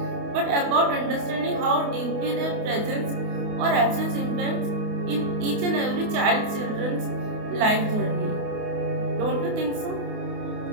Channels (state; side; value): late; left; 28 ms